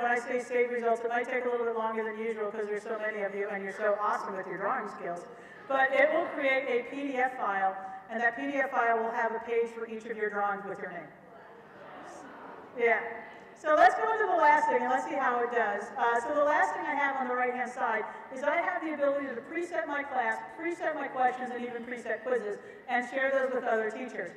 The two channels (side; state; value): both; identical; correlation 1.00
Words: I say save results, it might take a little bit longer than usual because there's so many of you and you're so awesome with your drawing skills. But it will create a PDF file, and that PDF file will have a page for each of your drawings with your name. Yeah. So let's go into the last thing, and let's see how it does. So the last thing I have on the right-hand side is I have the ability to preset my class, preset my questions, and even preset quizzes, and share those with other teachers.